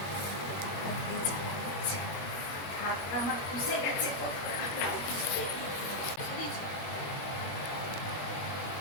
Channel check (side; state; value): right; late; 21 ms